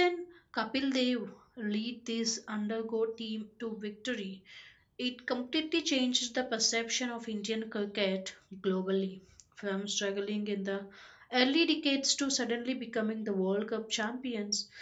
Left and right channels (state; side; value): identical; both; correlation 1.00